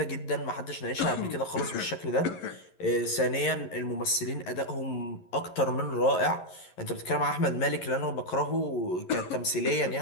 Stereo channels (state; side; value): late; right; 11 ms